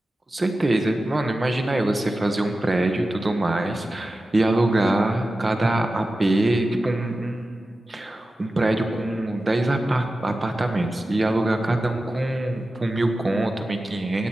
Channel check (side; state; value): both; normal; correlation 0.94